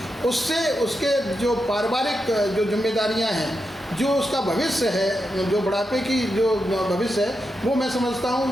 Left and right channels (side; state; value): both; normal; correlation 0.87